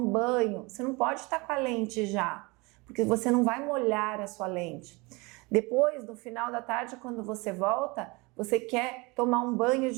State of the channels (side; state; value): left; quieter; 26.0 dB